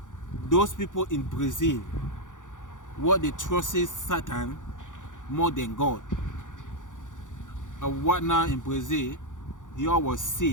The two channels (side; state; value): right; late; 0.87 ms